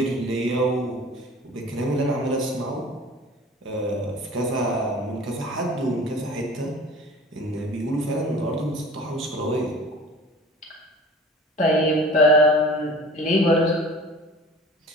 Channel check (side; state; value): both; normal; correlation 0.43